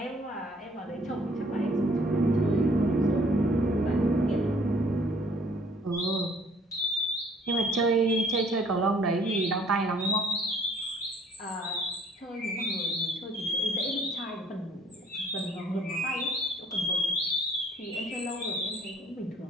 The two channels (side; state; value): both; normal; correlation 0.59